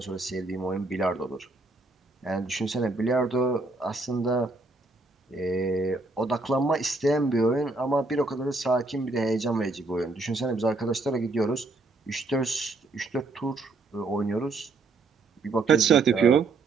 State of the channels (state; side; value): quieter; left; 3.4 dB